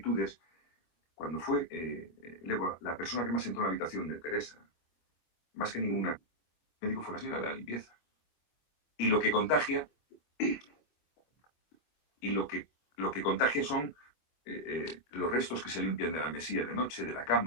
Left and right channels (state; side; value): late; right; 24 ms